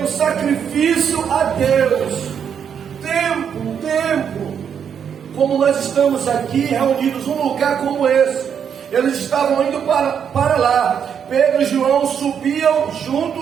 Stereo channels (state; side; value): quieter; left; 7.8 dB